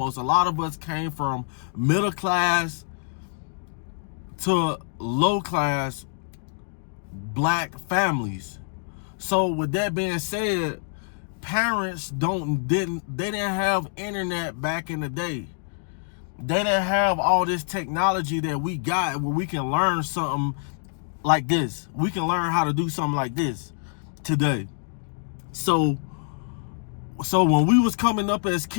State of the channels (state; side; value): silent; right; digital silence